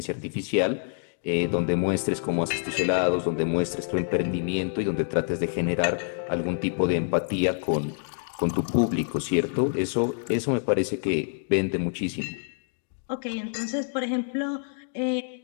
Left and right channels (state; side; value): silent; right; digital silence